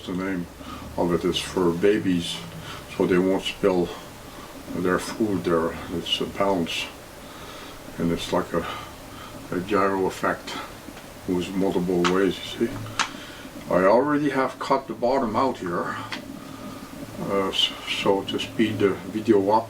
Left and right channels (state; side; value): identical; both; correlation 1.00